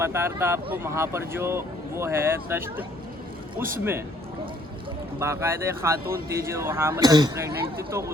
रहा था आपको, वहाँ पर जो वो है तश्त, उसमें बाकायदा खातून थी जो वहाँ मतलब प्रेगनेंट थी, तो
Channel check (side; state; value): both; normal; correlation 0.63